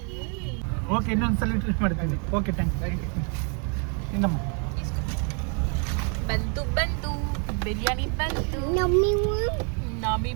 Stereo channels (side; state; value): left; quieter; 38.7 dB